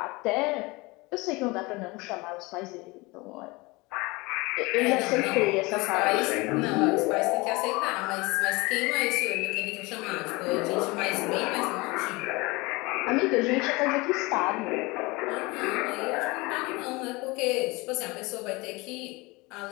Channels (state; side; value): quieter; right; 24.1 dB